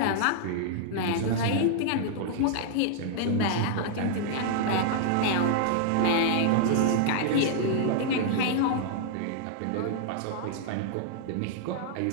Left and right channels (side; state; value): both; different; correlation -0.01